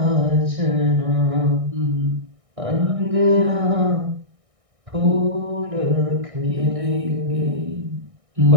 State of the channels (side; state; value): left; late; 1.6 ms